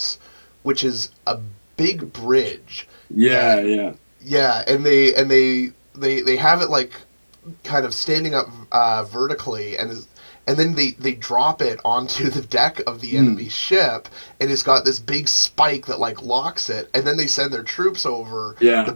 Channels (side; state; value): both; inverted; correlation -1.00